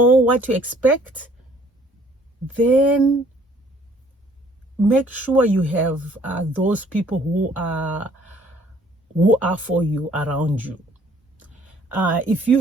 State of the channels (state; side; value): normal; both; correlation 0.59